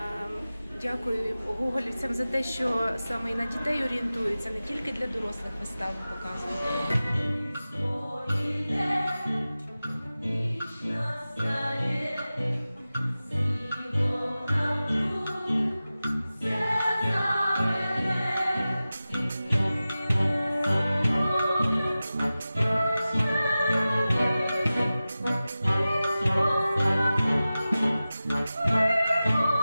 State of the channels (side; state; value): both; inverted; correlation -0.96